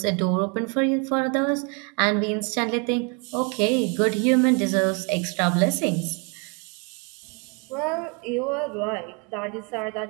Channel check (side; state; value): left; quieter; 34.0 dB